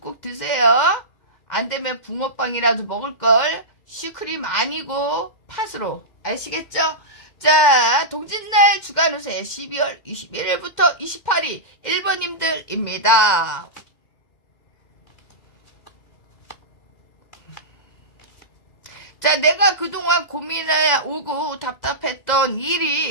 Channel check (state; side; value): late; right; 2.1 ms